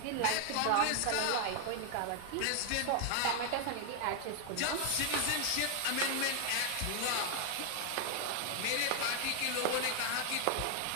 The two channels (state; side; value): different; both; correlation 0.00